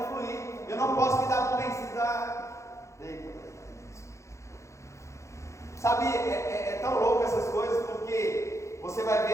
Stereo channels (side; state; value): right; late; 0.14 ms